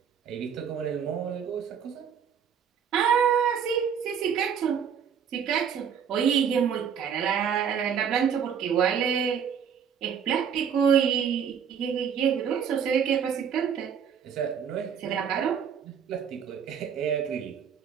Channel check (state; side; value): quieter; left; 7.6 dB